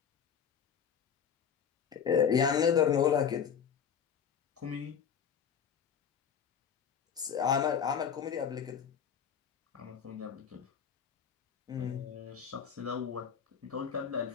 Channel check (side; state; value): right; quieter; 7.6 dB